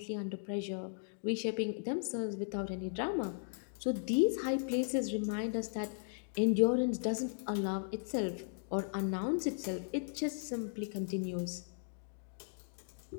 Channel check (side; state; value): right; silent; digital silence